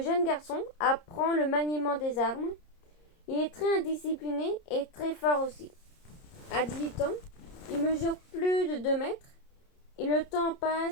garçon apprend le maniement des armes. Il est très indiscipliné et très fort aussi. À 18 ans, il mesure plus de 2 mètres et le temps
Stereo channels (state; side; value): late; right; 30 ms